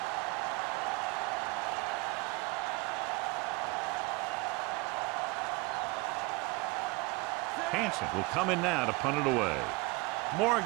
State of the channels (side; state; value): left; quieter; 25.2 dB